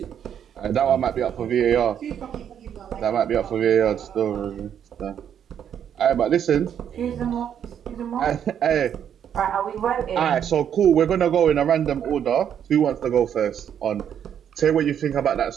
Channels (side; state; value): left; quieter; 9.0 dB